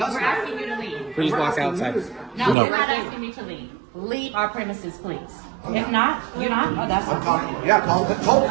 asking you to leave. Please walk outside. No, you're not asking me to leave. Leave our premises, please. If not, you're not. Oh, that's fine. Yeah, call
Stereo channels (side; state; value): left; drops out; at 2.6 s